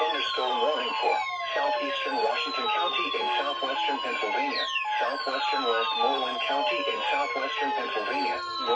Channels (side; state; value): both; identical; correlation 1.00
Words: thunderstorm warning for southeastern Washington County in southwestern Pennsylvania, southwestern Westmoreland County in southwestern Pennsylvania,